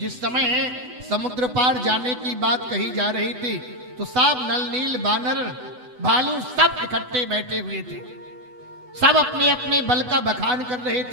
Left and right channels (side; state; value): left; late; 8.0 ms